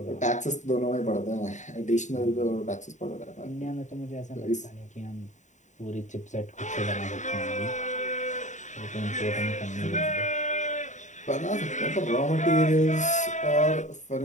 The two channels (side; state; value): right; late; 0.35 ms